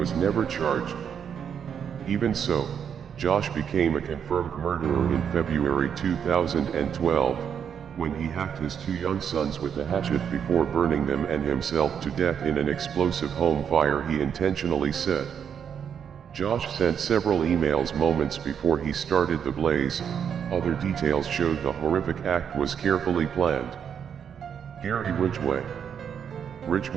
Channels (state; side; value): quieter; left; 7.8 dB